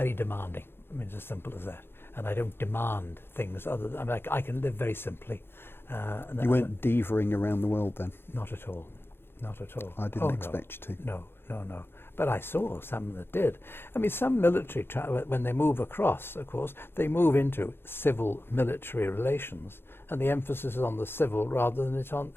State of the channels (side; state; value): right; late; 0.11 ms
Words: demanding. I mean, it's as simple as that. And I don't demand things other than, I can live very simply. And you weren't divaing around the world then? Not at all. Not at all. I didn't expect you to. No. But I saw some that did. I mean, some military, when they move across, of course, they move into civil-military relations, and the emphasis is on the civil rather than it's on